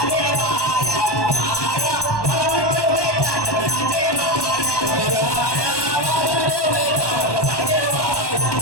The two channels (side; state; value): right; late; 1.1 ms